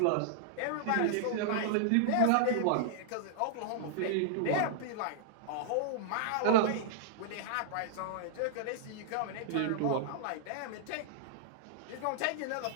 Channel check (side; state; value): both; different; correlation -0.01